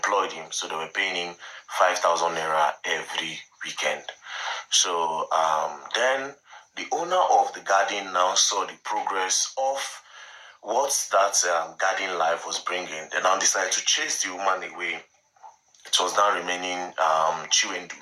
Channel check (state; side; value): identical; both; correlation 1.00